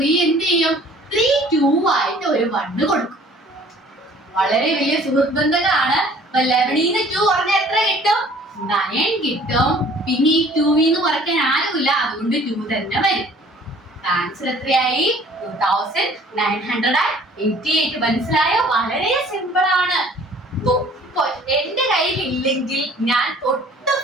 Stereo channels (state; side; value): normal; both; correlation 0.53